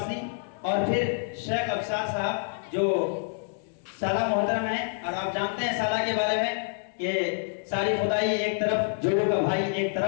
और फिर शेख अफसार साहब जो साला मोहतरम है, और आप जानते हैं साला के बारे में कि सारी खुदाई एक तरफ, जोड़ों का भाई एक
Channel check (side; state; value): right; silent; 60 dB below the other